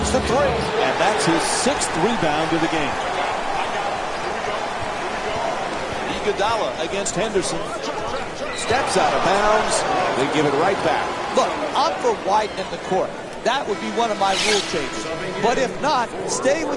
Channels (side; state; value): both; identical; correlation 1.00